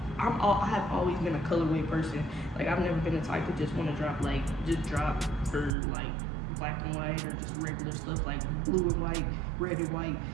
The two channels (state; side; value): drops out; left; at 5.7 s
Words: have always been a colorway person. Like, I've never been the type to just want to drop for like black and white or just regular stuff like blue and white, red and white,